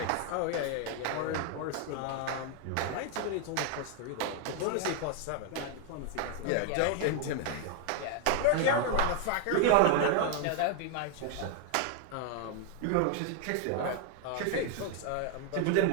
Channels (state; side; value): different; both; correlation 0.00